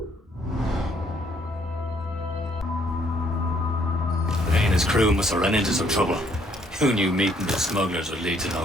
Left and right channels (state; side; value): normal; both; correlation 0.66